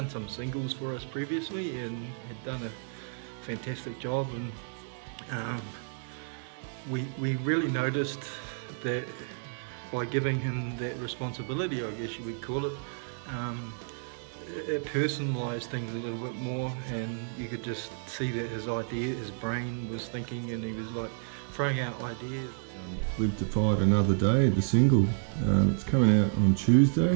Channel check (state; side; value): silent; left; digital silence